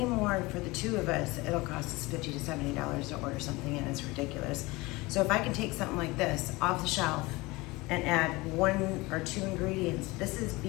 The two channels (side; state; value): right; quieter; 22.5 dB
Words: for the two of us, it'll cost us $50 to $70 to order something in. It's ridiculous. So if I can take something like this off the shelf and add 1 or 2 ingredients, this is